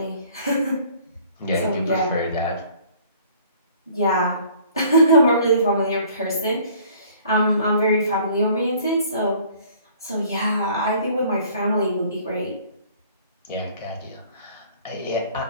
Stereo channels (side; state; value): both; inverted; correlation -0.54